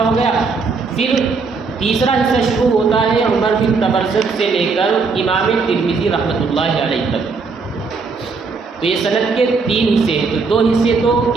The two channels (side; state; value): left; quieter; 4.6 dB